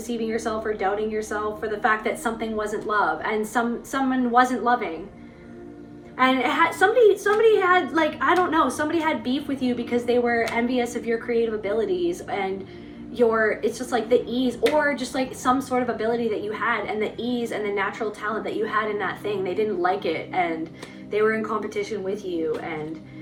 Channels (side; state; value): both; identical; correlation 1.00